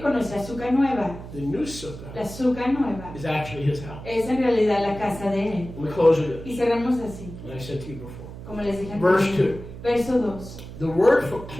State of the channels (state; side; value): noise; right; hum, 13 dB below the sound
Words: con nuestra sukkah nueva. The new sukkah. La sukkah nueva. Is actually his house. Es en realidad la casa de él. And we close with Y cerramos así. Like I said to you before. Como les dije Verse 2. Verso 2. The word for